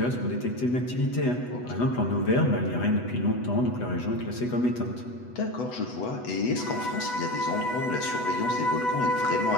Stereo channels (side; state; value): right; late; 8.1 ms